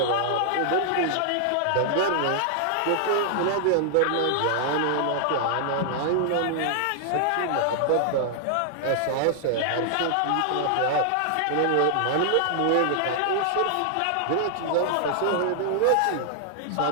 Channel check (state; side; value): different; both; correlation 0.00